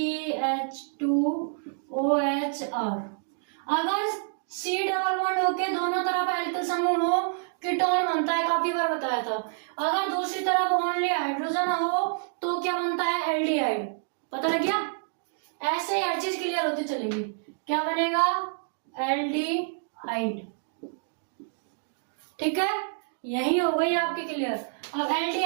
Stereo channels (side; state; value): left; silent; digital silence